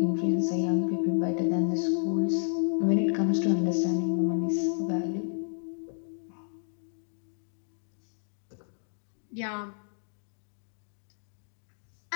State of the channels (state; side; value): silent; right; digital silence